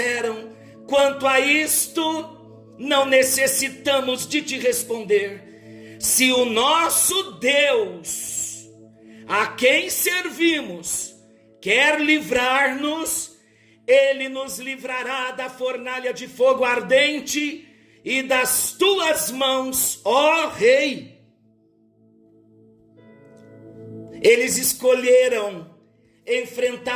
quanto a isto, não necessitamos de te responder. Se o nosso Deus, a quem servimos, quer livrar-nos, Ele nos livrará da fornalha de fogo ardente e das tuas mãos, ó rei. Eles escolheram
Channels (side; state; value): both; identical; correlation 1.00